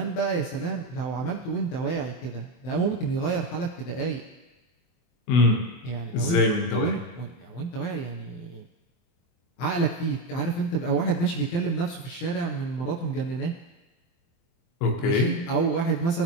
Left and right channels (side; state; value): right; late; 24 ms